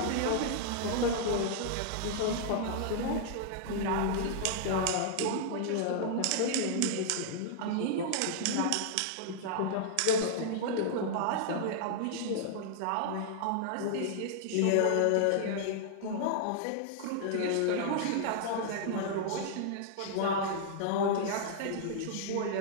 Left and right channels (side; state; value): both; different; correlation -0.01